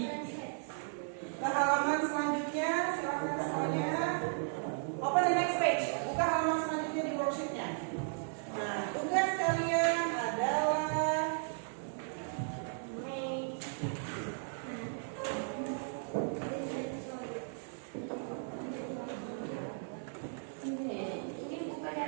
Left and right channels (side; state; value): left; silent; digital silence